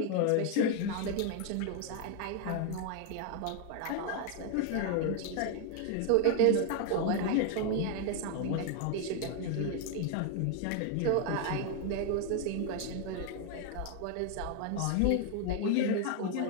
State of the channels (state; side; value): different; both; correlation 0.00